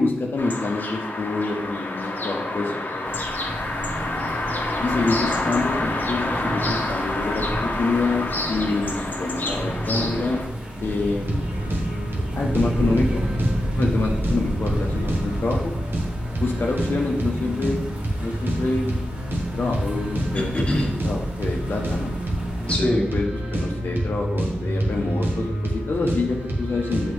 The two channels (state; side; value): normal; both; correlation 0.87